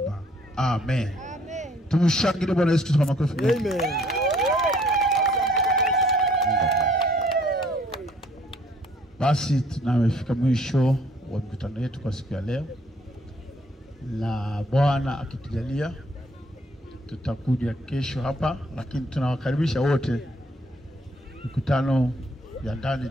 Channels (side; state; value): both; normal; correlation 0.61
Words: Amen. Tumshangilie Bwana Yesu Kristo kwa makofi. Amen. Basi tunafika mwisho wa mkutano wetu kwa siku ya leo, na Bwana akitujalia tutakuja kesho hapa, lakini tunawakaribisha wote. Mkutano ya ndani